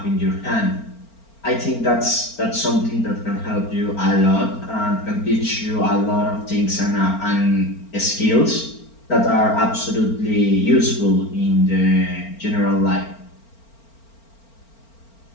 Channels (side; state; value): right; late; 4.4 ms